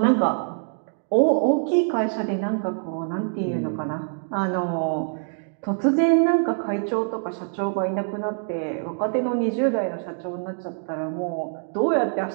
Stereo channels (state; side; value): silent; left; digital silence